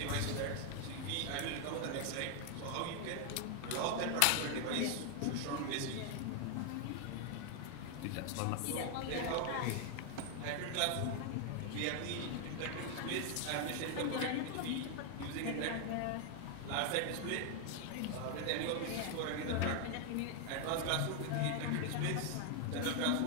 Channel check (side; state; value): both; different; correlation 0.00